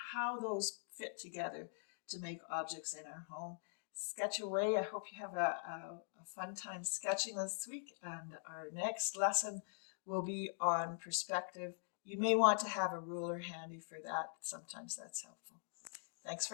how those fit together to make objects in our home. sketch away. I hope you have a fun time sketching this week, and our next lesson will be on perspective. You may want to have a ruler handy for that. Sometimes that's helpful. Thanks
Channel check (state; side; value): silent; right; digital silence